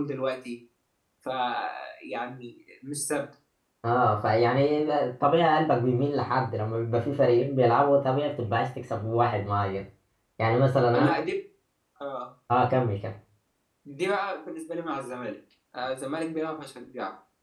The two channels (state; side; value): identical; both; correlation 1.00